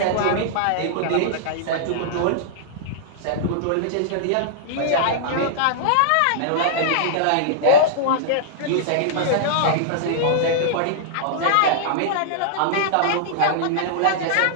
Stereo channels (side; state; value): both; different; correlation -0.02